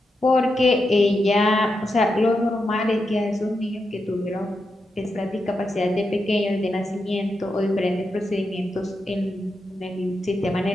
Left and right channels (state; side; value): normal; both; correlation 0.86